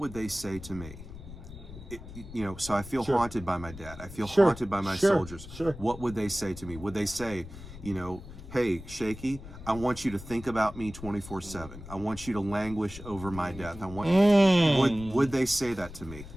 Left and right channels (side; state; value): left; noise; rumble, 14 dB below the sound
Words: they say to me? You know, so I feel haunted by my dad. I feel haunted by my soldiers. What would they say to me? Would they say, you know, hey, Shakey, I want you to think about me 24/7. I want you to languish over my death. I want. Would they say that to me?